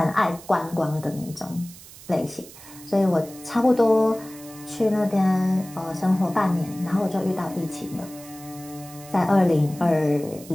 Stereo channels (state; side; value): noise; right; hiss, 18 dB below the sound